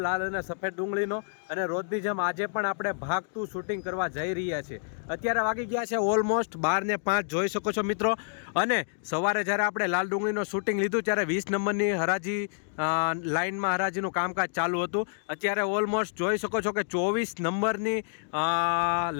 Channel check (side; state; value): right; silent; digital silence